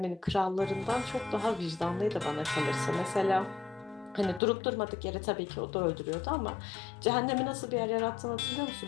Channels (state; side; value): drops out; right; at 4.4 s